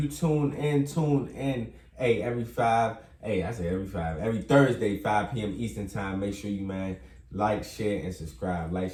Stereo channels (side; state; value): both; identical; correlation 1.00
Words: tune in. Hey, every Thursday, 5 p.m. Eastern time. Make sure you, man, like, share, and subscribe.